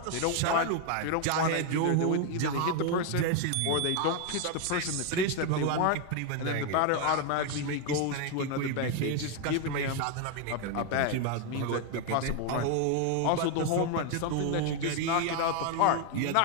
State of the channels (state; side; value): different; both; correlation 0.01